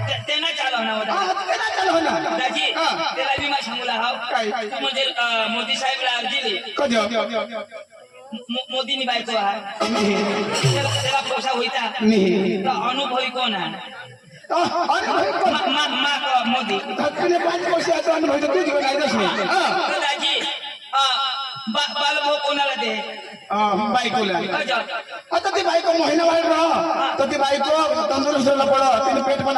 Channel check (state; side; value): identical; both; correlation 1.00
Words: त्यांना चालवणार होता हा ते ना चालू ना दाजी हा. त्याला बी मा सांगूला हाव काय? तू म्हणजे मोदी साहेबला अर्जी दे कधी मोदीनी बायको हा त्याला पोसा होईता नाही तो अनुभवी कोण आहे अरे भाई कोण मोदी धक्कने 5 वर्ष आता अनुभव तू जीवन आयदच नाही तर दाजी बालभाऊ कोणाला दे बायकोला अजा. आता ती बायको महिना वाढ राह तर ती बायको तंदुरुस्त पड तिने पेट पण